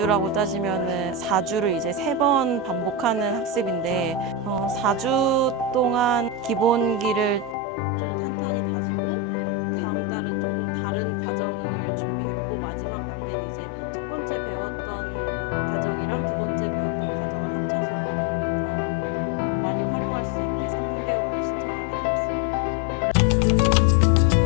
따지면은 4주를 이제 3번 반복하는 학습인데 4주 동안 기본기를 좀 탄탄히 다지고 다음 달은 조금 다른 과정을 준비했고 마지막 단계는 이제 첫 번째 배웠던 과정이랑 두 번째 배웠던 과정을 합쳐서 좀 더 많이 활용할 수 있게 3개월을 신청하게 되었습니다.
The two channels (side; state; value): right; drops out; at 7.6 s